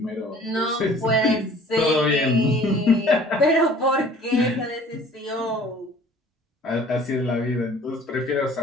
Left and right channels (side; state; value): both; normal; correlation 0.50